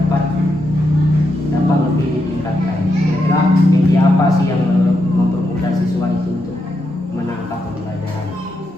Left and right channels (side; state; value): both; normal; correlation 0.83